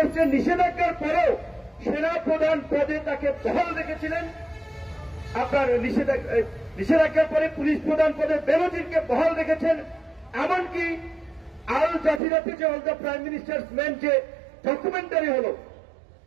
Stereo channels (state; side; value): drops out; left; at 12.2 s